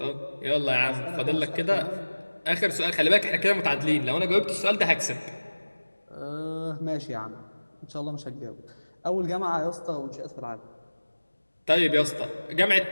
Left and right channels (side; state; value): both; inverted; correlation -1.00